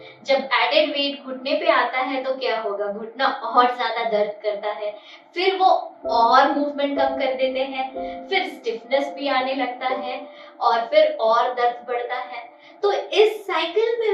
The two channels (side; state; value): both; identical; correlation 1.00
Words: जब एडेड वेट घुटने पे आता है तो क्या होगा, घुटना और ज्यादा दर्द करता है। फिर वो और मूवमेंट कम कर देते हैं, फिर स्टिफनेस भी आने लगता है और फिर और दर्द बढ़ता है। तो इस साइकिल